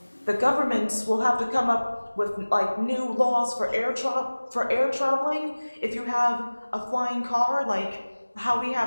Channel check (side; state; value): both; inverted; correlation -1.00